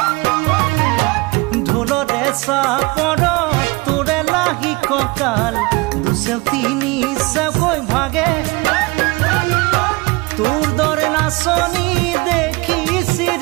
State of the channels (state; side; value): quieter; left; 24.8 dB